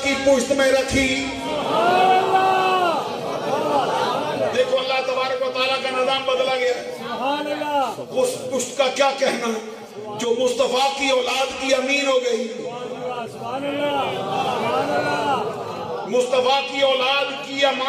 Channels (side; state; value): both; identical; correlation 1.00